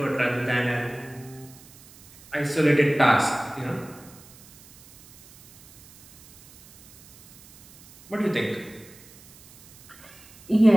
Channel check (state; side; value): noise; right; hiss, 24 dB below the sound